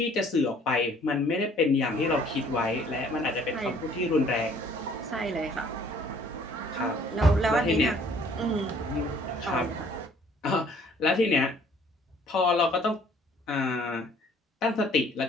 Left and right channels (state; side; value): normal; both; correlation 0.58